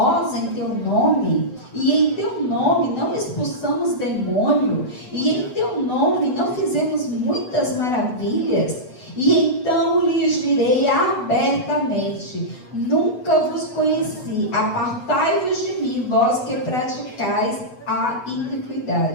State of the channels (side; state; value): right; late; 8.1 ms